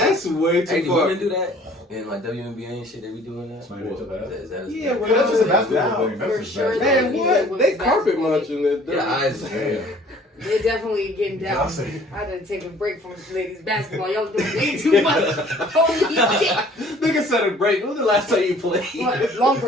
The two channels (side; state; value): both; normal; correlation 0.54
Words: way Hey, too do far. women do that? In like WNBA and shit, they be doing that? Smack each other ass? Is that Yeah, that- well, That's just a Yeah, basketball thing. That's for just sure. basketball. Man, Yeah, what? They carpet basketball. munching it. Yeah, eyes. Damn. They're definitely getting down. Y'all say- I had to take a break from ladies basketball. Y'all doing way too much. Holy shit! Nigga said a break. When was the last time you played? What? Long